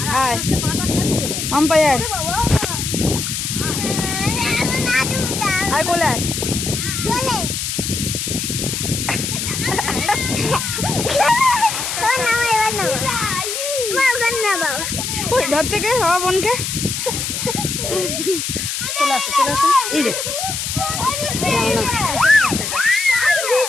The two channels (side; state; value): left; noise; hiss, 3 dB below the sound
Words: আয় আম্পাই আয়, আয় কোলে আয়। ওই ধর থেকে বাবা বোনকে চলে আসো চলে আসো। এই রে।